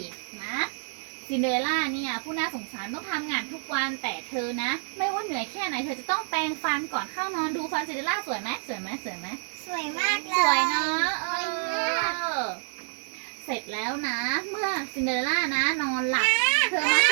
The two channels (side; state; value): left; silent; 59 dB below the other